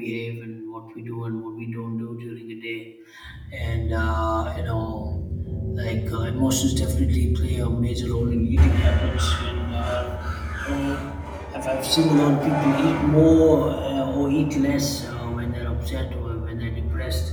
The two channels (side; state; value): both; identical; correlation 1.00